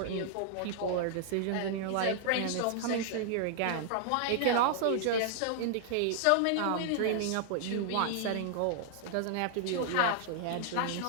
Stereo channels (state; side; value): different; both; correlation -0.01